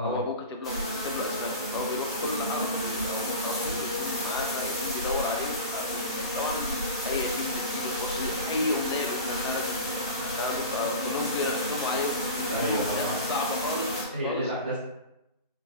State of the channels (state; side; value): inverted; both; correlation -0.30